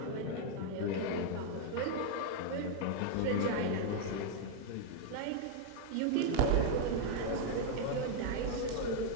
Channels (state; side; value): different; both; correlation 0.00